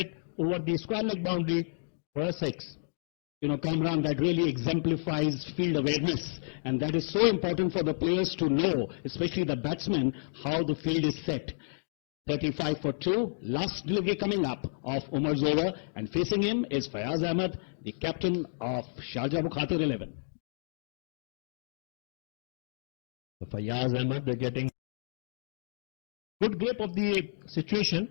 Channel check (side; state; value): right; silent; digital silence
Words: over the square leg boundary for a six. You know, Kamran, that really exemplifies field awareness. And that is so important for the players to know, especially the batsmen, how the field is set. 35 for 2. Last delivery coming up of Umar's over. And facing him is Fayaz Ahmed, the captain of Sharjah Bukhatir 11. So Fayaz Ahmed, they're getting good grip of the situation.